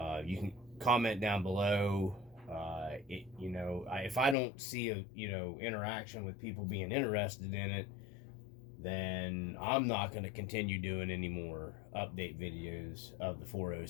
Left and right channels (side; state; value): right; drops out; at 4.4 s